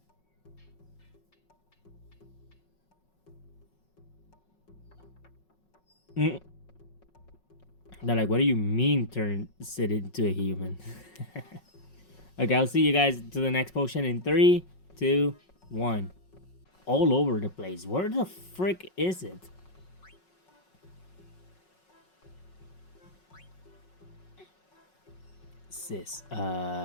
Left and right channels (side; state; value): right; late; 5.4 ms